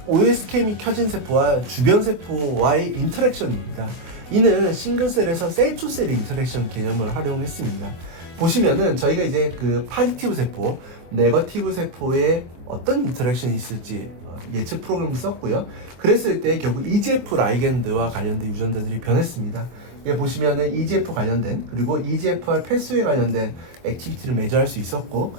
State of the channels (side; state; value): left; late; 23 ms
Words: OSKM이 켜진 세포와 주변 세포와의 인터랙션입니다. 이는 싱글셀에서 셀-투-셀 인터랙션 개념을 활용했습니다. 보시면은 저희가 이제 그 파지티브 세포, 네거티브 세포에 어떤 인터랙션이 있을지 예측 프로그램을 썼고요. 그랬을 때 결국 EGF 라이겐드와 관련된 유전자들이 변했습니다. 이게 보시면은 EGF 관련된 그리고 EGFR 패스웨이 관련된 액티비티를 매저할 수 있었고